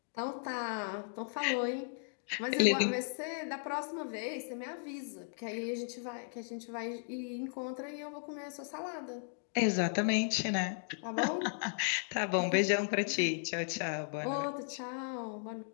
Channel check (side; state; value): right; silent; digital silence